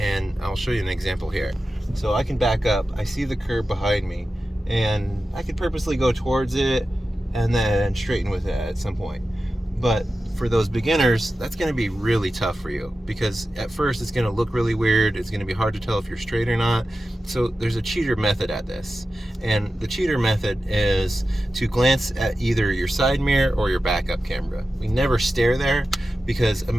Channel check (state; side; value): normal; both; correlation 0.93